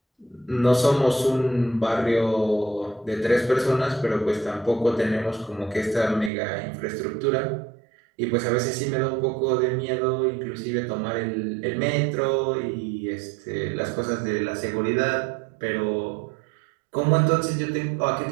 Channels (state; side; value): drops out; left; at 6.3 s